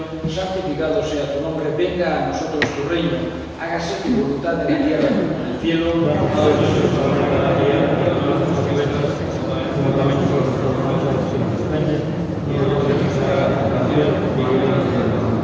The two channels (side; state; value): both; identical; correlation 1.00